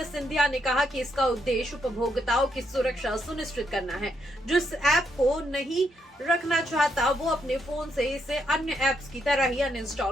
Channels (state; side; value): normal; both; correlation 0.77